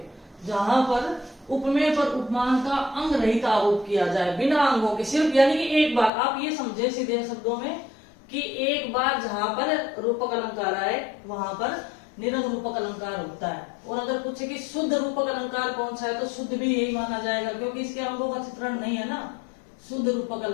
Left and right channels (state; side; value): drops out; right; at 6.1 s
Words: जहां पर उपमेय पर उपमान का अंग रहित आरोप किया जाए, बिना अंगों के, सिर्फ यानी कि एक बार। आप ये समझे सीधे शब्दों में कि एक बार जहां पर रूपक अलंकार आए वहां पर निरंग रूपक अलंकार होता है। और अगर पूछे कि शुद्ध रूपक अलंकार कौन सा है, तो शुद्ध भी यही माना जाएगा, क्योंकि इसके अंगों का चित्रण नहीं है ना। शुद्ध रूपक